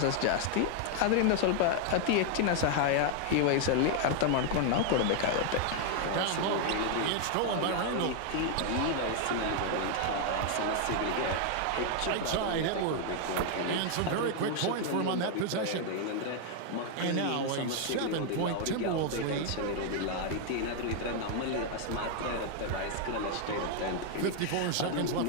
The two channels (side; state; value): both; different; correlation 0.00